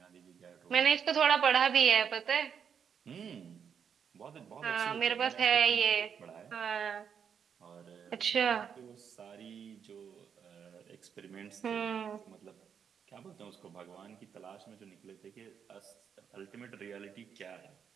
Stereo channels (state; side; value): quieter; left; 7.4 dB